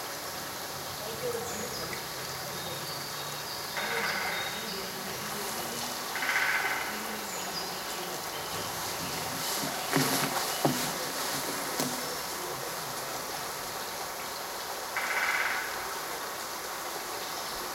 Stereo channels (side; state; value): both; identical; correlation 1.00